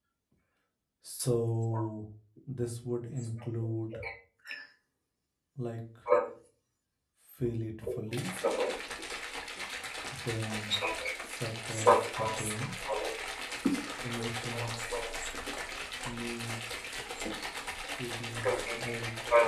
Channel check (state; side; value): identical; both; correlation 1.00